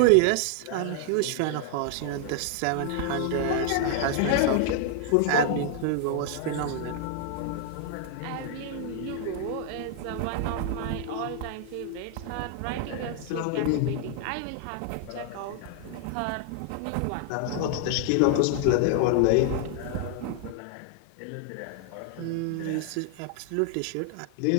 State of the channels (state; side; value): different; both; correlation 0.00